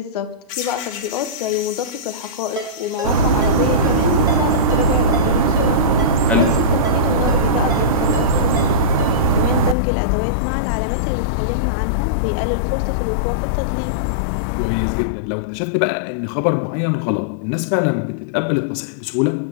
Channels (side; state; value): right; drops out; at 9.8 s